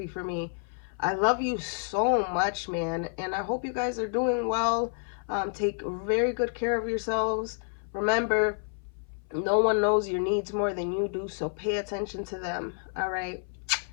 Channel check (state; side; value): silent; right; 58 dB below the other